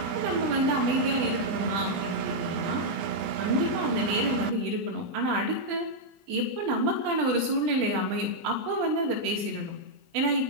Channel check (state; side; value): late; left; 19 ms